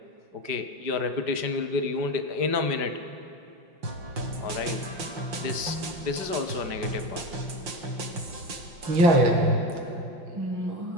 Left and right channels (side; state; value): left; late; 5.7 ms